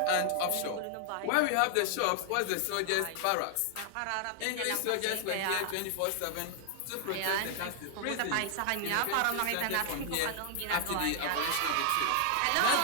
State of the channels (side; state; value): both; different; correlation 0.00